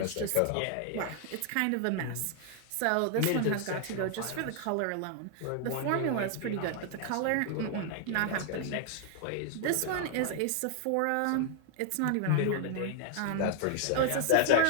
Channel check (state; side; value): different; both; correlation 0.00